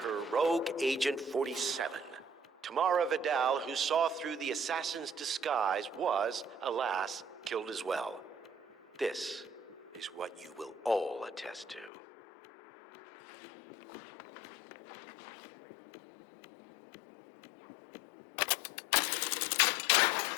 rogue Agent 47. Tamara Vidal, who saw through the assassin's disguise, was, alas, killed as well. This is what you will all attest to.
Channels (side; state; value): right; drops out; at 11.9 s